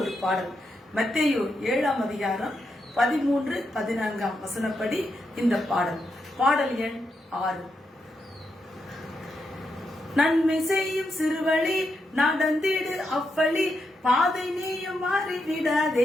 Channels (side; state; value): both; normal; correlation 0.83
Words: பாடல். மத்தேயு 7ஆம் அதிகாரம் 13-14 வசனப்படி இந்த பாடல். பாடல் எண் 6. நன்மை செய்யும் சிறுவழி நடந்திடு அவ்வழி, பாதை நீயும்